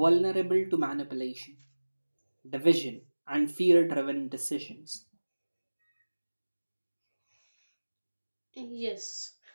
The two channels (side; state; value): both; inverted; correlation -1.00